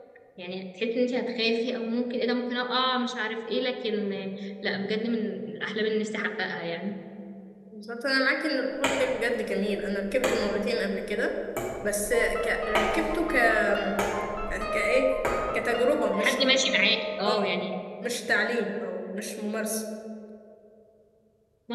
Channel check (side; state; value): both; identical; correlation 1.00